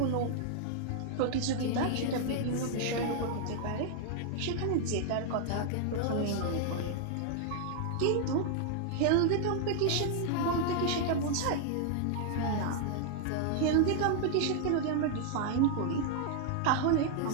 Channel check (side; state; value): both; different; correlation 0.00